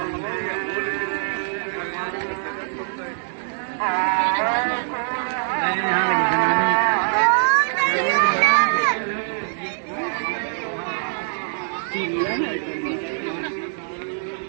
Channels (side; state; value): left; silent; 59 dB below the other